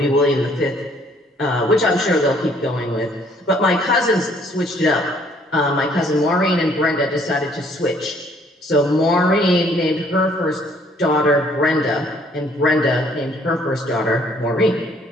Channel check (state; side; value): normal; both; correlation 0.62